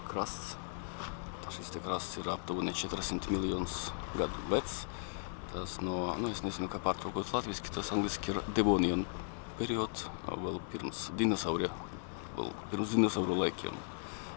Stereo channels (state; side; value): silent; right; 53 dB below the other